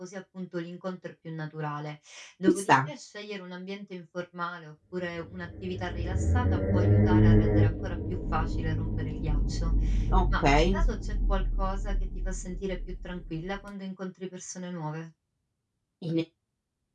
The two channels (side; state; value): both; identical; correlation 1.00